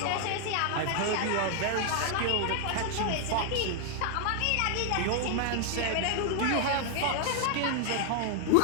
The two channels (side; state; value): both; different; correlation 0.00